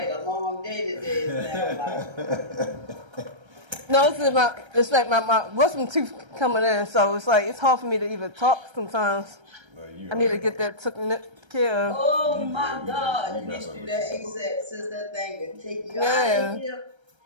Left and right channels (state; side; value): late; left; 1.3 ms